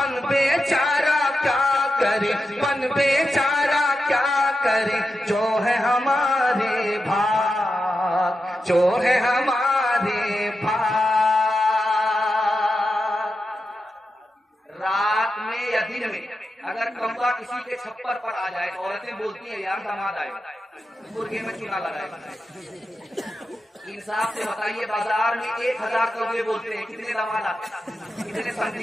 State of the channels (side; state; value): both; normal; correlation 0.89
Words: بیچارہ کیا کرے, بن بیچارہ کیا کرے, جو ہے ہمارے بھاگ, جو ہے ہمارے بھاگ. رات میں یا دن میں اگر کمبا کسی کے چھپر پر آ جائے, عورتیں بولتی ہیں یار داماد آئے, مرغے میں چونا لگائے. انصاف سے بتائیے, بازار میں 1000 کوے بولتے ہیں, کتنے داماد آتے ہیں, کتنے